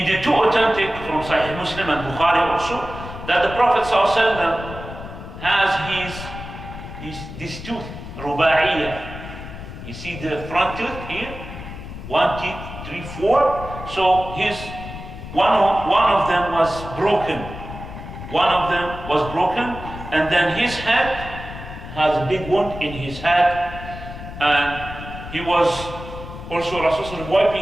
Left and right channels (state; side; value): noise; left; rumble, 11 dB below the sound